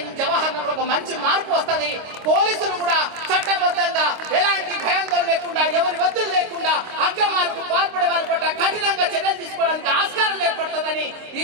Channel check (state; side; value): late; left; 26 ms